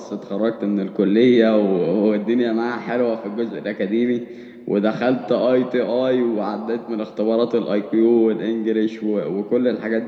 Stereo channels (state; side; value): identical; both; correlation 1.00